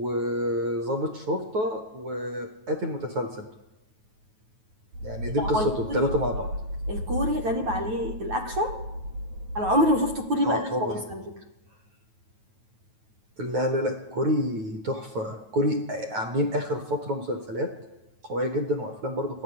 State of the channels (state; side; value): late; left; 9.2 ms